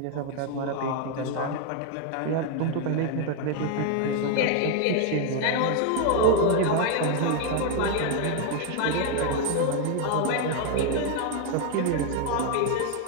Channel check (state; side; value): different; both; correlation 0.01